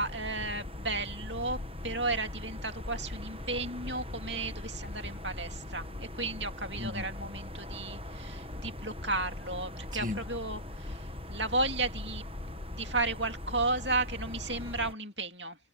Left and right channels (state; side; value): normal; both; correlation -0.16